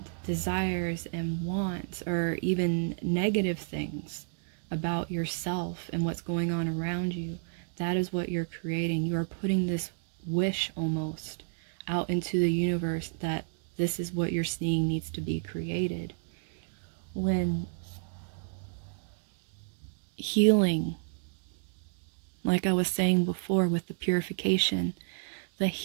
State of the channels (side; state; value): left; silent; digital silence